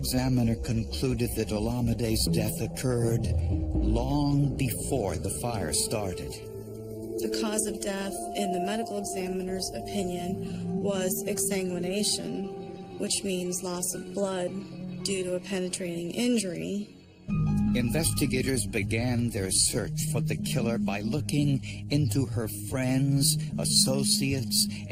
concluded that Olamide's death occurred long before the fire started. The cause of death, in the medical examiner's opinion, was exsanguination, which means loss of blood due to a penetrating injury. Investigators began their search for the killer by looking into her friends, associates,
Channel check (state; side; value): identical; both; correlation 1.00